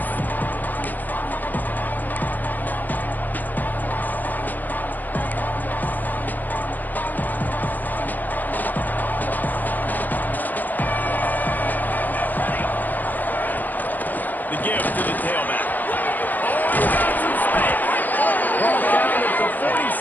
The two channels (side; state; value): right; late; 0.084 ms